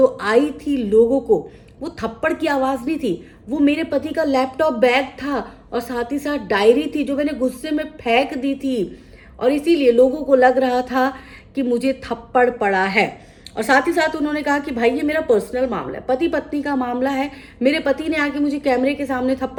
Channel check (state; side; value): identical; both; correlation 1.00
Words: आई थी लोगों को, वो थप्पड़ की आवाज़ नहीं थी, वो मेरे पति का लैपटॉप बैग था और साथ ही साथ डायरी थी जो मैंने गुस्से में फेंक दी थी और इसीलिए लोगों को लग रहा था कि मुझे थप्पड़ पड़ा है। और साथ ही साथ उन्होंने कहा कि भाई ये मेरा पर्सनल मामला है, पति पत्नी का मामला है, मेरे पति ने आके मुझे कैमरे के सामने